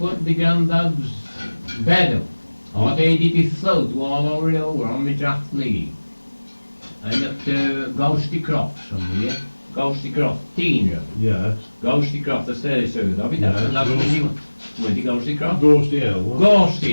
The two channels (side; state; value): both; inverted; correlation -1.00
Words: the granddad's bed up. I made it float all over on the draft league. And up to Ghosty Croft somewhere. Ghosty Croft, teen room. Yeah. Ghosty Croft, that's the third of it. That's Yeah, that's Ghost- the new one. Where the Ghosty Croft? Ghost Hill. what?